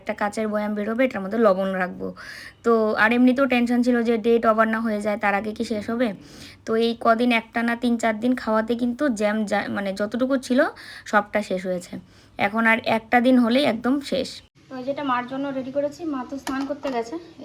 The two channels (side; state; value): both; identical; correlation 1.00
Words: কাচের বয়াম বেরোবে, এটার মধ্যে লবণ রাখবো। তো আর এমনিতেও টেনশন ছিল যে ডেট ওভার না হয়ে যায়, তার আগে কি শেষ হবে। তো এই কদিন একটানা 3-4 দিন খাওয়াতে কিন্তু জ্যাম মানে যতটুকু ছিল সবটা শেষ হয়েছে। এখন আর একটা দিন হলেই একদম শেষ। তো যেটা মার জন্য রেডি করেছি, মা তো স্নান করতে গেছে,